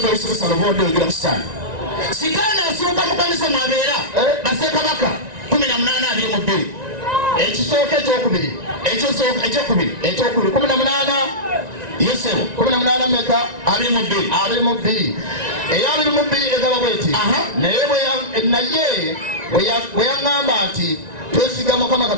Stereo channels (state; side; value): late; left; 1.9 ms